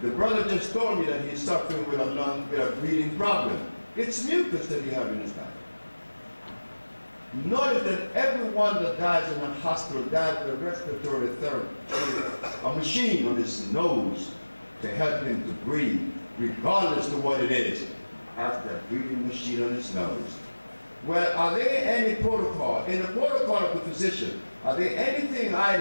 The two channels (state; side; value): inverted; both; correlation -1.00